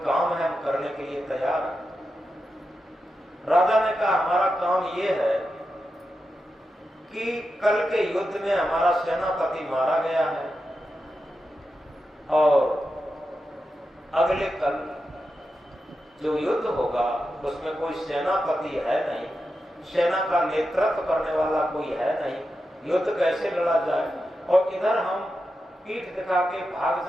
काम है, हम करने के लिए तैयार हैं। राजा ने कहा हमारा काम यह है कि कल के युद्ध में हमारा सेनापति मारा गया है, और अगले कल जो युद्ध होगा उसमें कोई सेनापति है नहीं, सेना का नेतृत्व करने वाला कोई है नहीं, युद्ध कैसे लड़ा जाए। और इधर हम पीठ दिखा के भाग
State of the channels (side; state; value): both; normal; correlation 0.89